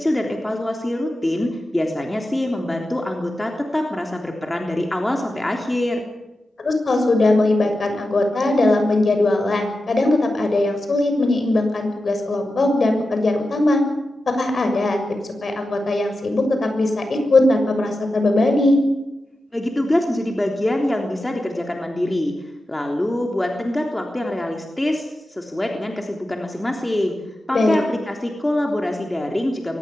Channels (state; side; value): normal; both; correlation 0.92